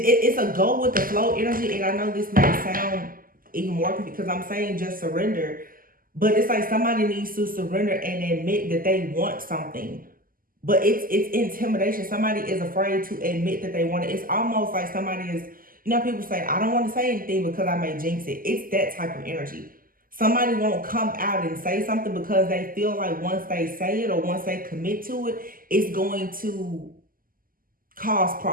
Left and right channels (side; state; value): left; late; 0.41 ms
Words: a go with the flow energy. And I know this may sound even more because I'm saying just surrender, but it's like somebody needs to surrender and admit that they want something. But it's intimidation. Somebody is afraid to admit that they want it. It's almost like somebody is, you know, people say, I don't want to say anything because I may jinx it. It's that type of energy. Somebody won't come out and say something because they feel like once they say it or once they commit to it, it's going to cause